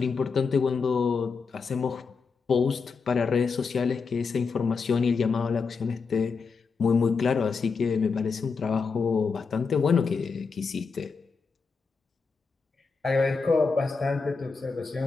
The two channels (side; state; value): right; quieter; 5.0 dB